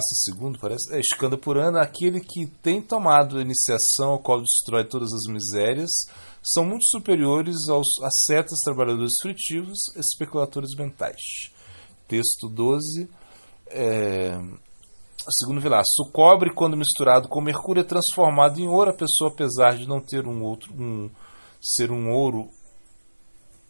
II, parece, Skanda Purana, aquele que tem tomado a iniciação ao qual destrói todas as misérias, são muito superiores aos ascetas, trabalhadores fritivos, especuladores mentais. Texto 12, segundo Vilasa, o cobre, quando misturado com mercúrio, é transformado em ouro. A pessoa, apesar de não ter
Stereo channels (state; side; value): inverted; both; correlation -1.00